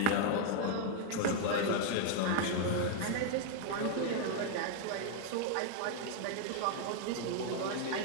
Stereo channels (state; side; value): different; both; correlation 0.00